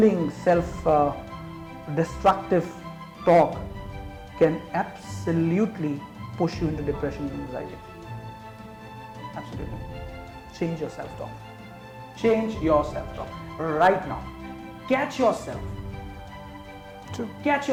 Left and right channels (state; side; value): identical; both; correlation 1.00